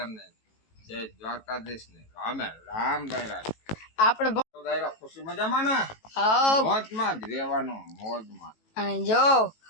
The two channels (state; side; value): late; right; 18 ms